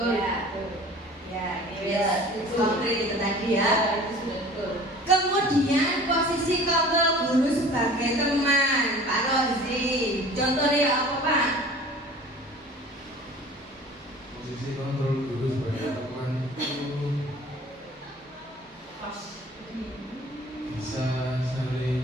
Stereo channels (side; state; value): both; normal; correlation 0.45